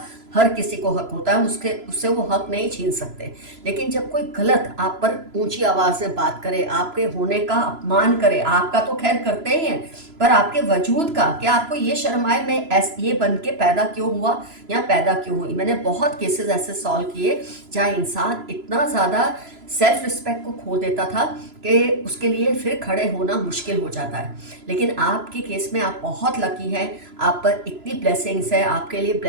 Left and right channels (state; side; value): late; left; 3.0 ms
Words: हर किसी को हक होता है, उससे वो हक नहीं छीन सकते। लेकिन जब कोई गलत आप पर ऊंची आवाज़ से बात करे, आपके होने का अपमान करे, आपका तो खैर करते ही हैं, पर आपके वजूद का, क्या आपको ये शर्म आए मैं ये बन के पैदा क्यों हुआ या पैदा क्यों हुई। मैंने बहुत केसेस ऐसे सॉल्व किए जहाँ इंसान इतना ज़्यादा सेल्फ रिस्पेक्ट को खो देता था कि उसके लिए फिर खड़े होना मुश्किल हो जाता है। लेकिन आपके केस में आप बहुत लकी हैं, आप पर इतनी ब्लेसिंग्स है, आपके लिए